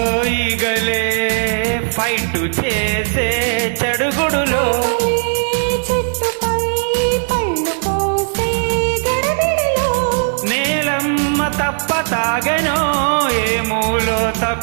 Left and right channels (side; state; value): left; silent; digital silence